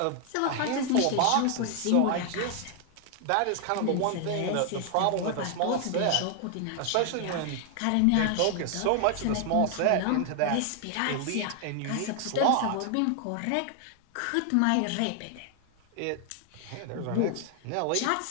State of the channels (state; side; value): different; both; correlation 0.00